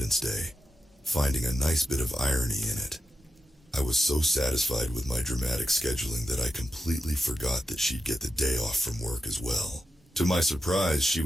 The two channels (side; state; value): both; normal; correlation 0.88